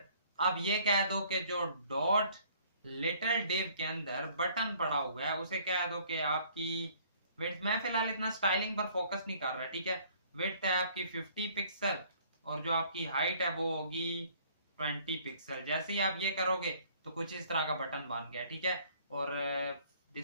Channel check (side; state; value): both; inverted; correlation -0.58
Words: अब ये कह दो कि जो डॉट लिटिल डिव के अंदर बटन पड़ा हुआ है उसे कह दो कि आपकी विड्थ, मैं फिलहाल इतना स्टाइलिंग पर फोकस नहीं कर रहा। ठीक है, विड्थ है आपकी 50 पिक्सल, और जो आपकी हाइट है वो होगी 20 पिक्सल। जैसे ही आप ये करोगे तो कुछ इस तरह का बटन बन गया, ठीक है। और